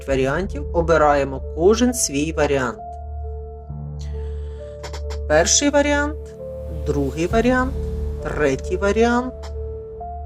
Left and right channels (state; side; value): identical; both; correlation 1.00